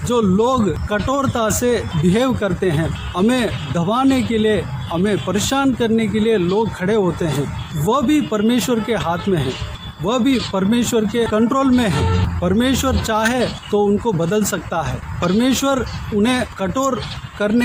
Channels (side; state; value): both; identical; correlation 1.00